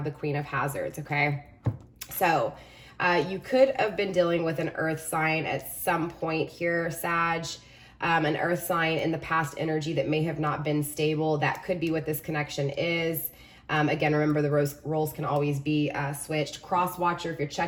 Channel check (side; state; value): both; identical; correlation 1.00